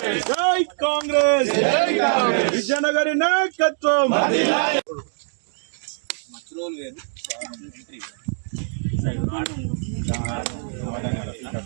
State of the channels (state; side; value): silent; left; digital silence